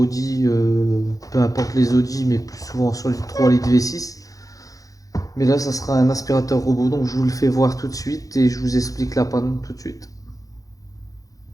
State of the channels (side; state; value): right; late; 0.17 ms